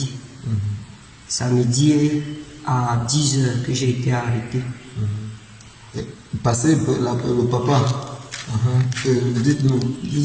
Samedi à 10h que j'ai été arrêté. Passez le papa. Dites-nous,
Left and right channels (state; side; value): identical; both; correlation 1.00